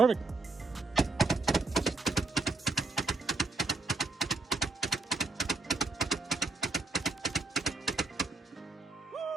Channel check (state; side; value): quieter; left; 3.4 dB